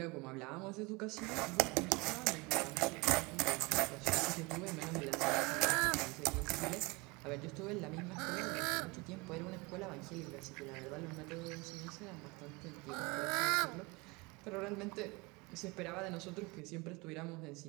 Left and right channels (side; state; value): left; quieter; 25.9 dB